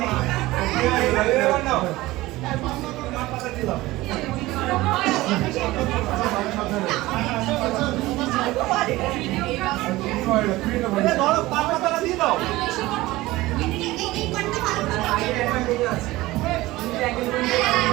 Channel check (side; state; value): left; quieter; 18.7 dB